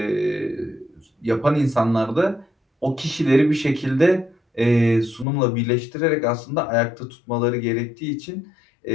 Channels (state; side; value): drops out; right; at 5.2 s